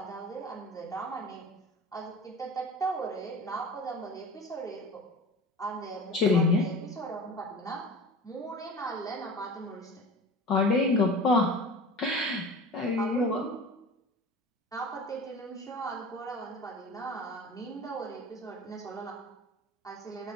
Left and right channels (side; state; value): both; normal; correlation 0.36